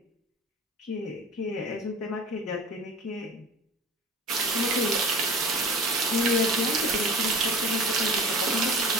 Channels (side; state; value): both; normal; correlation 0.39